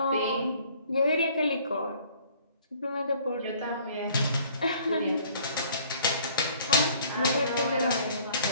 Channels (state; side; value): inverted; both; correlation -0.56